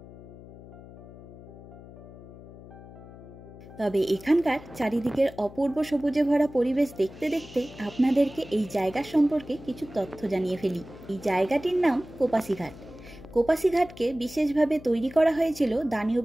তবে এখানকার চারিদিকের অপূর্ব সবুজে ভরা পরিবেশ দেখতে দেখতে আপনাদেরকে এই জায়গা সম্পর্কে কিছু তথ্য জানিয়ে ফেলি। এই জায়গাটির নাম কোপাসি ঘাট। কোপাসি ঘাটকে বিশেষভাবে তৈরি করা হয়েছিল দানিউব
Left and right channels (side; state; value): left; noise; hum, 17 dB below the sound